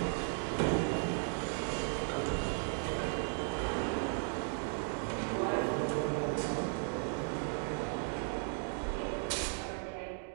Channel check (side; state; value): left; silent; 54 dB below the other